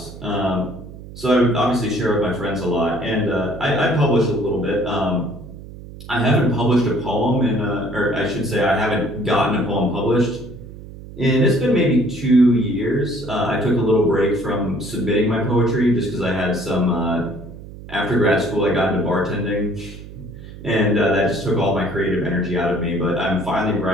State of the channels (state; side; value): noise; right; hum, 15 dB below the sound